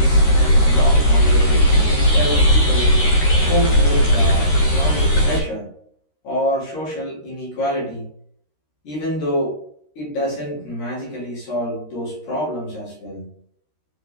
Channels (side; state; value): right; late; 13 ms